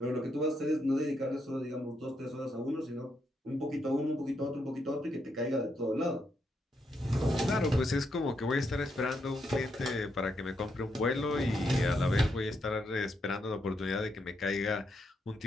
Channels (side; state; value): both; normal; correlation 0.80